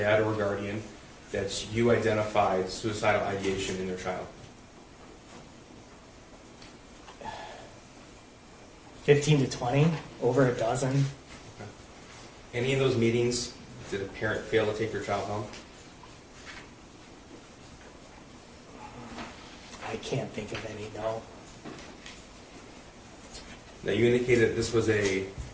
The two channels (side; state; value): both; identical; correlation 1.00